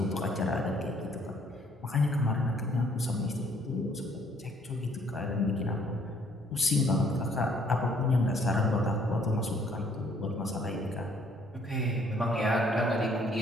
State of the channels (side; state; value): both; normal; correlation 0.63